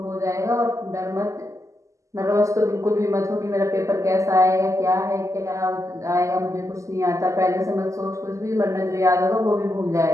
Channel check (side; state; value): left; late; 0.15 ms